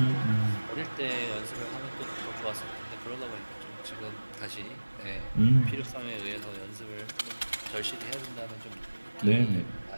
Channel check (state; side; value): inverted; both; correlation -1.00